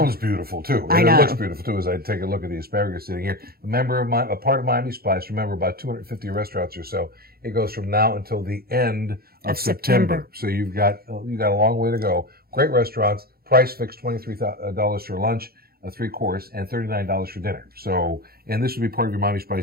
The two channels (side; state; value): left; late; 0.44 ms